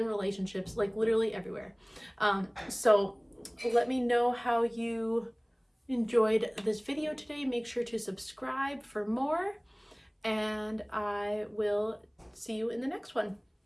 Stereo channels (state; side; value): identical; both; correlation 1.00